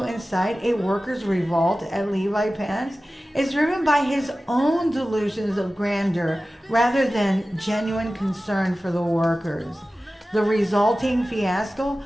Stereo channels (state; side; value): normal; both; correlation 0.96